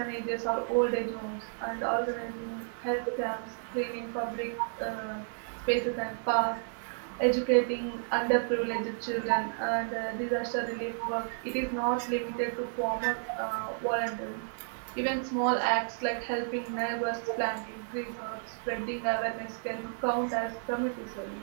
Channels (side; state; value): left; silent; digital silence